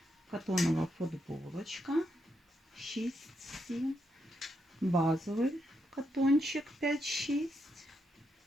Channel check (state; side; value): normal; both; correlation 0.81